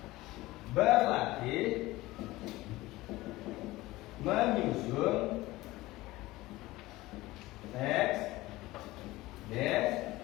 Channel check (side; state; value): right; quieter; 18.8 dB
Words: Berlatih menyusun teks